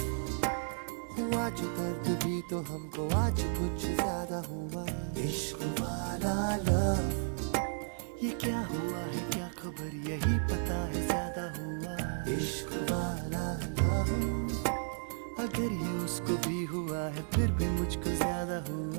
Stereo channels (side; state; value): left; silent; digital silence